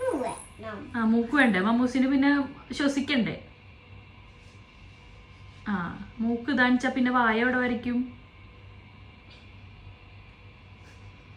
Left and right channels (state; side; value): identical; both; correlation 1.00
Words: മൂക്ക് വേണ്ടേ മമ്മൂസിന്? പിന്നെ ശ്വസിക്കണ്ടേ? മൂക്ക് ഇതാണിച്ചാ പിന്നെ വായ എവിടെ വരയ്ക്കും?